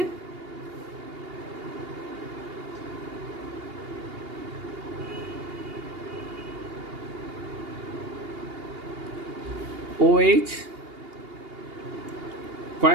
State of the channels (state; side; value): late; left; 2.8 ms